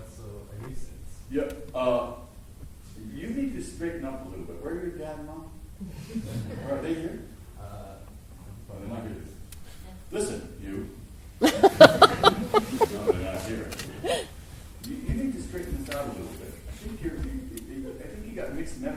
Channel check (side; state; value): both; identical; correlation 1.00